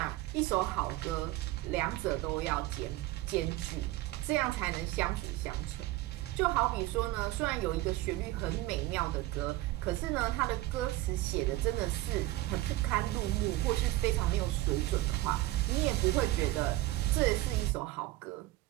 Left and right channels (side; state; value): left; quieter; 17.6 dB